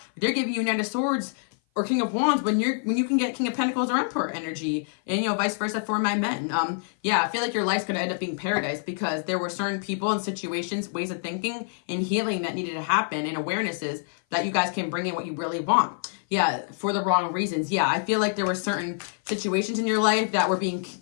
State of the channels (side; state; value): right; silent; 56 dB below the other